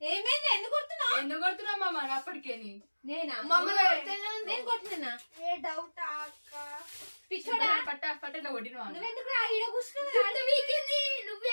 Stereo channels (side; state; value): both; inverted; correlation -1.00